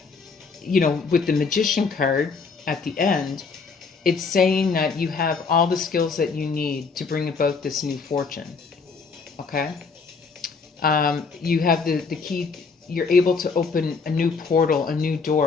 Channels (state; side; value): quieter; right; 4.9 dB